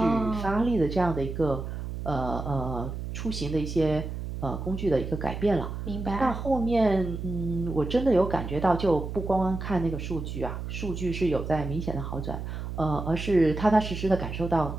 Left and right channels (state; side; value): noise; right; hum, 6 dB below the sound